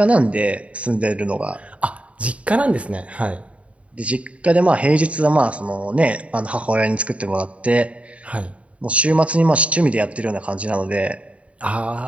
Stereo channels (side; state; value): left; late; 0.064 ms